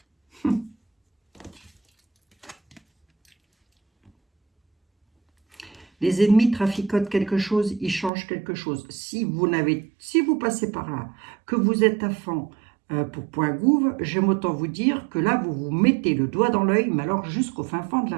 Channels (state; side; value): drops out; left; at 8.1 s